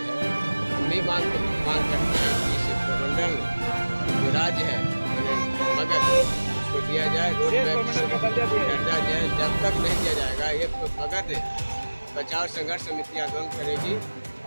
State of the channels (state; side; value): inverted; both; correlation -1.00